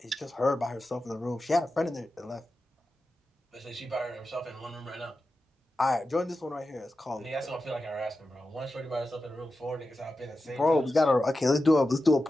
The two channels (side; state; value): both; normal; correlation 0.92